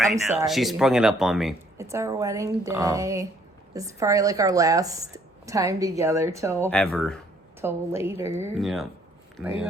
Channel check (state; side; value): normal; both; correlation 0.64